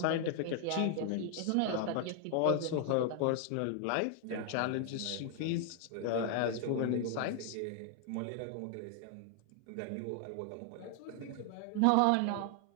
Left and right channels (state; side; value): different; both; correlation 0.00